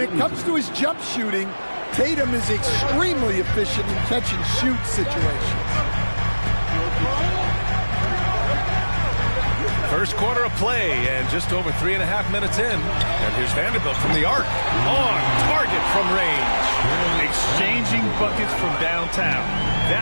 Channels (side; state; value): both; inverted; correlation -1.00